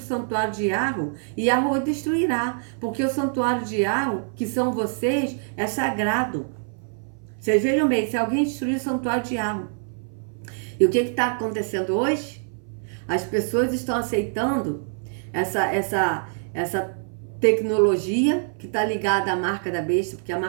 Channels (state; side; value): silent; left; 59 dB below the other